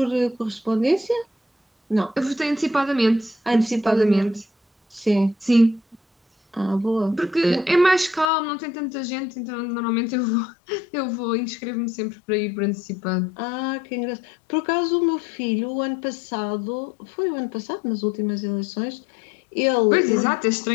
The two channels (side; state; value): right; drops out; at 8.3 s